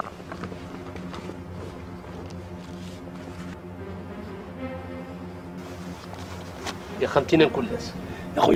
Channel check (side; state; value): both; identical; correlation 1.00